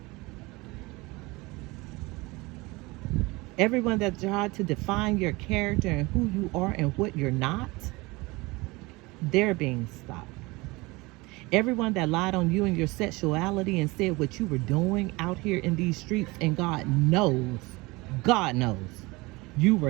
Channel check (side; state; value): left; quieter; 23.4 dB